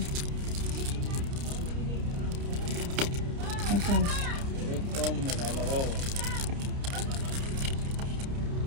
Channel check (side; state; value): left; late; 30 ms